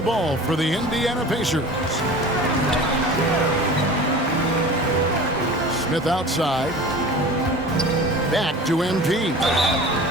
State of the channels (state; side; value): normal; both; correlation 0.39